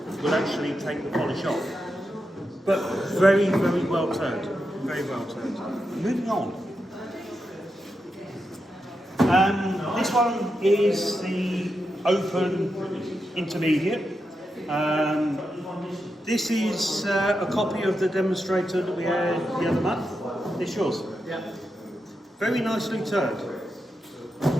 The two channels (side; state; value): both; normal; correlation 0.87